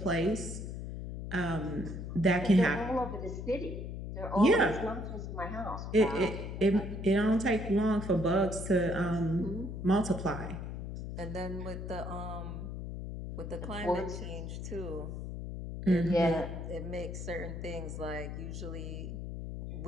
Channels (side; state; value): left; noise; hum, 6 dB below the sound